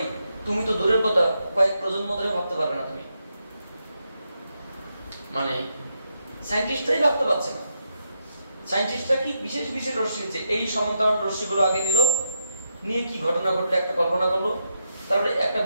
তুমি তো দূরের কথা কয়েক প্রজন্ম ধরে ভাবতে পারবে না তুমি। মানে সায়েন্টিস্টরাই ভাবতে পারছে না। সায়েন্টিস্টরা কি বিশেষ বিশেষ রশ্মি নিচ্ছে, এই সমান্তরাল রশ্মিগুলো আগে নিল, নিয়ে কি ঘটনা ঘটলো একটা কল্পনা করলো, তারপরে একটা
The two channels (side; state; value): both; inverted; correlation -0.82